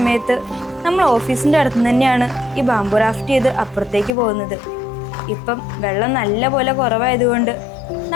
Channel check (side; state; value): right; drops out; at 4.1 s